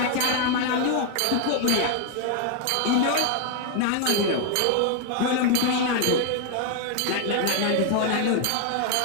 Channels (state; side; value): different; both; correlation 0.01